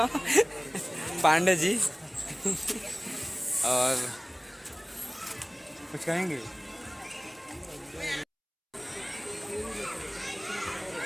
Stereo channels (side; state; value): both; identical; correlation 1.00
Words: पांडे जी। और कुछ कहेंगे?